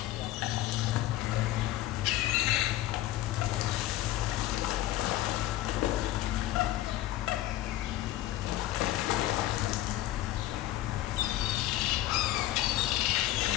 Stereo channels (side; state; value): right; quieter; 14.9 dB